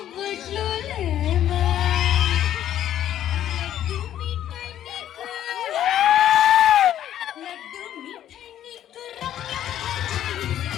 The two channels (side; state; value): right; quieter; 11.3 dB